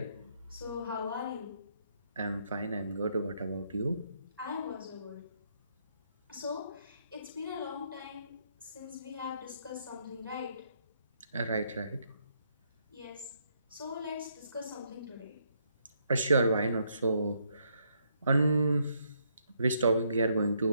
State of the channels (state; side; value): inverted; both; correlation -0.74